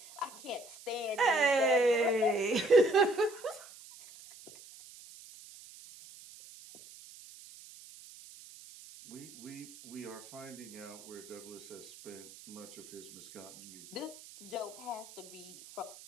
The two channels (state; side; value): noise; right; hiss, 18 dB below the sound